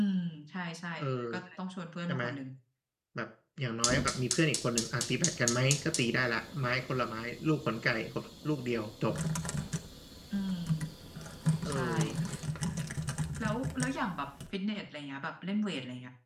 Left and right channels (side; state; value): both; identical; correlation 1.00